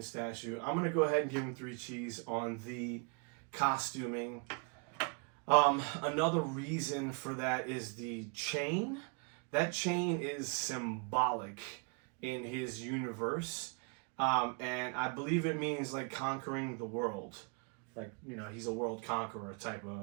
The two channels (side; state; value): left; quieter; 38.1 dB